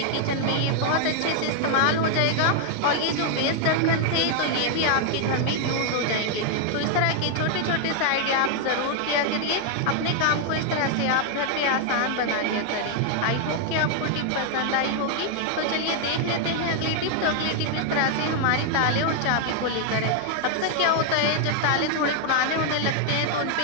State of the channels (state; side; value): different; both; correlation 0.00